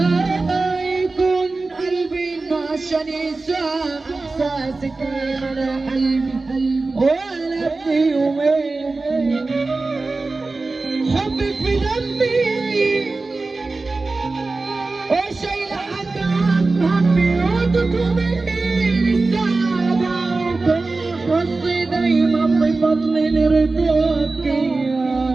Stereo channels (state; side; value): quieter; left; 3.6 dB